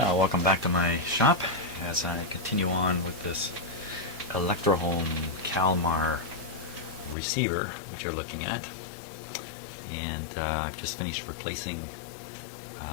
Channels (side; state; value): right; drops out; at 7.2 s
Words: welcome back to my shop as I continue on with this Electrohome Kalmar receiver which you're looking at. And I've just finished replacing